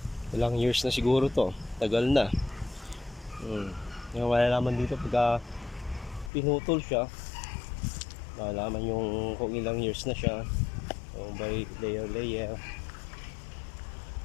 Ilang years na siguro to. Tagal na. Yung malalaman dito pagka pinutol siya, malalaman yung kung ilang years na siya. So by layer.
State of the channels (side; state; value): right; drops out; at 6.3 s